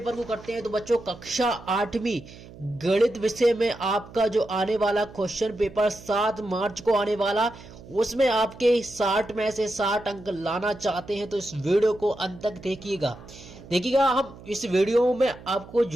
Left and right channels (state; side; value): noise; right; hum, 18 dB below the sound